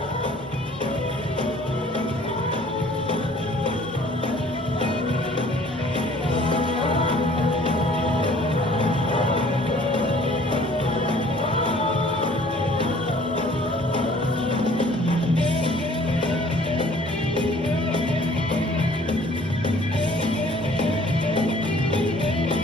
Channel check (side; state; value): both; normal; correlation 0.54